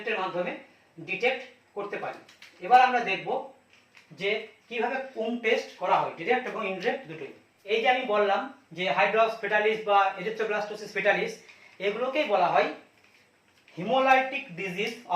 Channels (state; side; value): identical; both; correlation 1.00